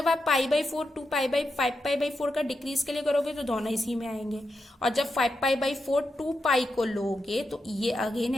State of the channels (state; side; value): normal; both; correlation 0.86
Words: आप π/4 5π/4 का डिक्रीज के लिए करोगे तो दोनों इसी में आएंगे, और जब 5π/4 2π को लोगे तो ये अगेन